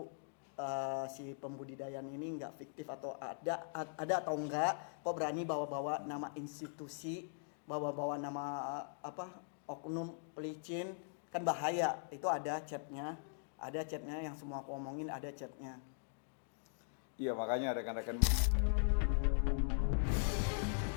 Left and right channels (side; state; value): right; silent; digital silence